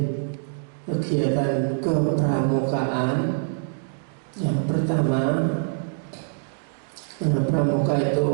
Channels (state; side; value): silent; left; digital silence